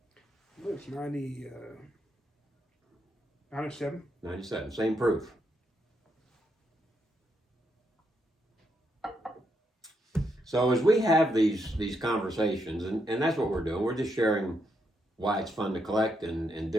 It's 97. 97, same proof. So as we have these conversations, and that's what we're doing, we're just sharing why it's fun to collect and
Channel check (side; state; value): both; normal; correlation 0.79